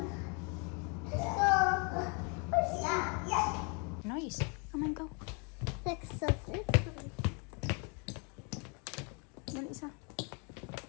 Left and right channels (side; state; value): right; quieter; 34.8 dB